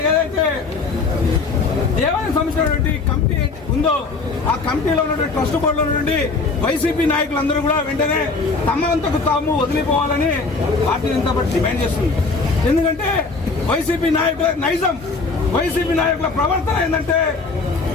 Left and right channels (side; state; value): right; quieter; 4.1 dB